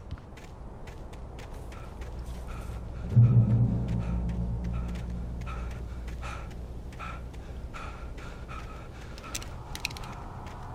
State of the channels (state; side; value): identical; both; correlation 1.00